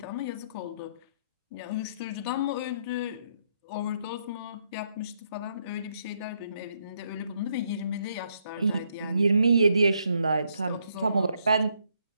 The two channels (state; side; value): inverted; both; correlation -0.74